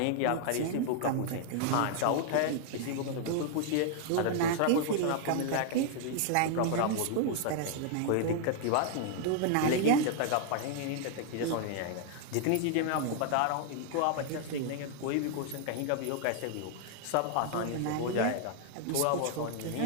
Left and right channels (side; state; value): both; different; correlation 0.00